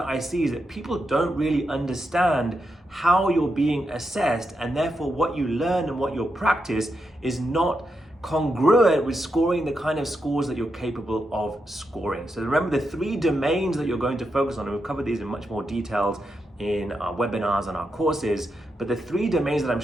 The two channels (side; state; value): both; normal; correlation 0.85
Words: I see is that people don't really understand how you're being assessed, and therefore what you learn and what you practice is not congruent with scoring the kind of scores that you're capable of scoring. So remember the 3 domains that you're going to focus on, and we'll cover these in much more details in our webinars and our courses, but the 3 domains that I'm